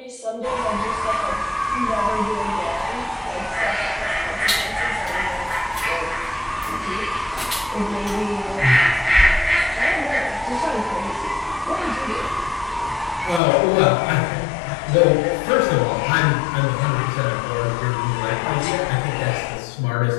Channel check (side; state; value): right; drops out; at 13.4 s